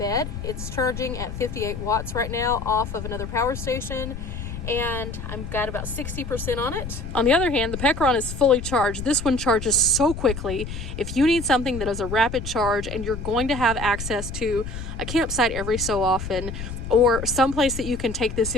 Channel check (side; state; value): left; noise; rumble, 8 dB below the sound